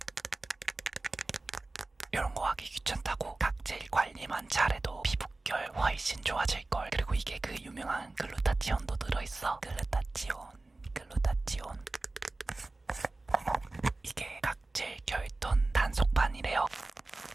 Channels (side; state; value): left; quieter; 3.1 dB